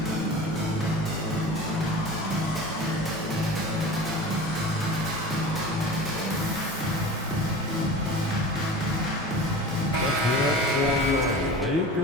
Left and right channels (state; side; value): normal; both; correlation 0.35